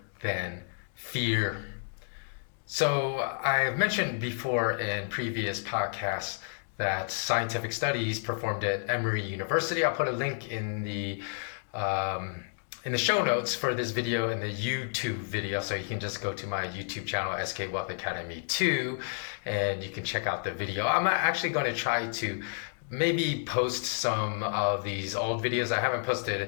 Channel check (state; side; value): silent; right; digital silence